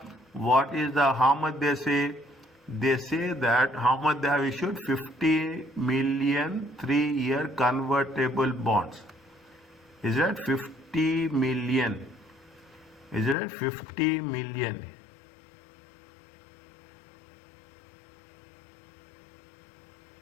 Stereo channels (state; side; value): drops out; right; at 13.4 s